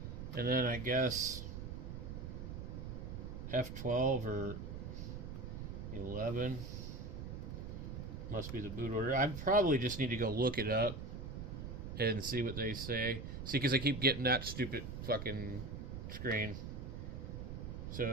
And then I guess F12 or 11 must be the boot order. I probably just need to go look it up and see what they say. See, because I keep getting that stupid fucking screen.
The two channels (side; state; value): right; noise; rumble, 7 dB below the sound